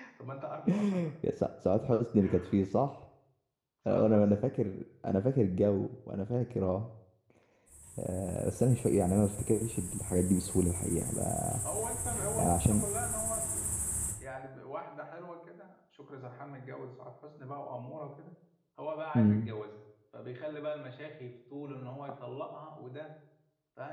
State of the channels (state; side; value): identical; both; correlation 1.00